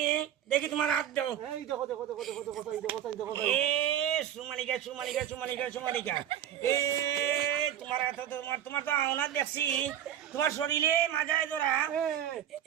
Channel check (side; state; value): left; quieter; 10.5 dB